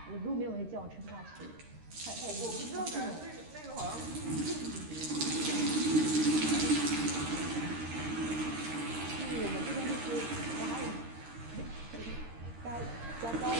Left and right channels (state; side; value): late; left; 13 ms